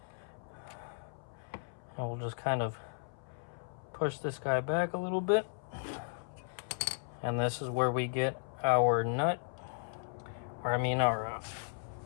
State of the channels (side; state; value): right; silent; 54 dB below the other